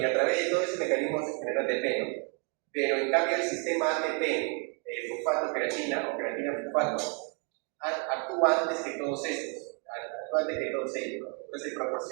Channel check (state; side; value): quieter; left; 37.6 dB